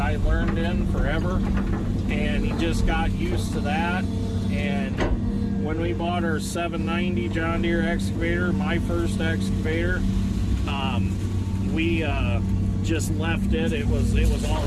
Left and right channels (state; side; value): identical; both; correlation 1.00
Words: I learned in forever, and he just got used to that. And when we bought our 790 John Deere excavator, my first excavator, we just left it. It was